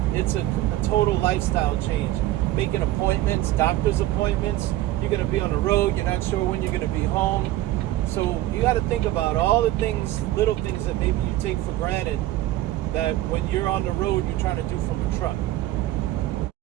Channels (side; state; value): left; quieter; 15.3 dB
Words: it's a total lifestyle change. Making appointments, doctor's appointments, you're going to be on the road, you're not sure when you're going to be home. So you got to think about all the things, little things that maybe you take for granted, that when you're on the road, you're trying to do from a truck.